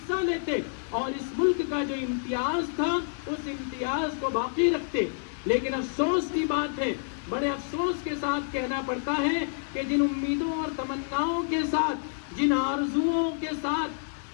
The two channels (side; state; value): right; silent; digital silence